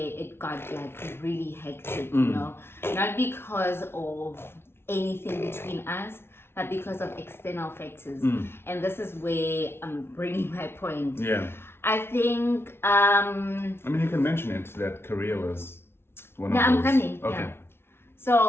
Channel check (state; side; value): late; right; 0.12 ms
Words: got like really hectic, not because of anything between us, but because of external factors. And this is where I'm bringing my point. Yeah. I think... I mean, you can mention it, that career was one of those. I'm coming. Okay. Yeah.